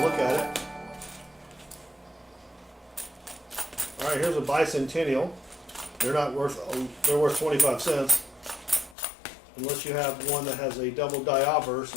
at it. All right, here's a bicentennial. They're not worth, they're worth 25 cents. Unless you have one that has a double die obverse,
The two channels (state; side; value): drops out; right; at 9.0 s